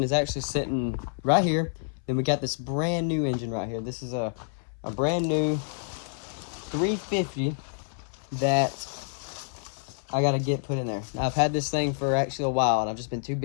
is actually sitting right here. Then we got this brand new engine right here. This is a brand new 350 that I gotta get put in there. Now, I've had this thing for actually a while, and I've just been too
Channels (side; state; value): right; silent; 59 dB below the other